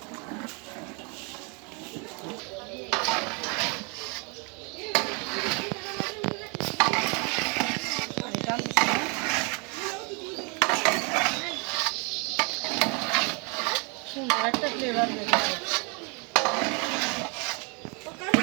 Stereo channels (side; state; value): left; quieter; 32.7 dB